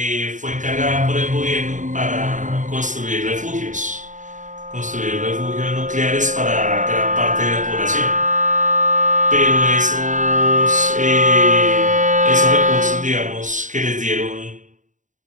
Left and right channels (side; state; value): left; late; 0.36 ms